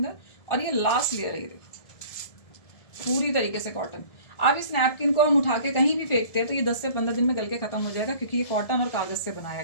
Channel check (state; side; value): late; right; 1.7 ms